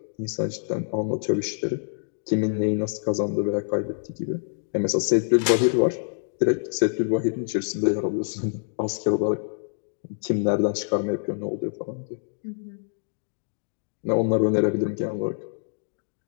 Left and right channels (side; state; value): right; silent; digital silence